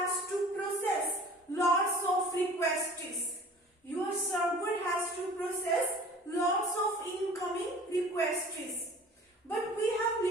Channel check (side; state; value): both; normal; correlation 0.45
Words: to process lots of requests. Your server has to process lots of incoming requests. But we have